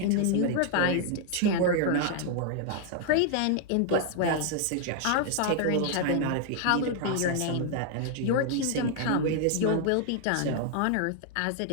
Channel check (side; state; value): both; different; correlation 0.00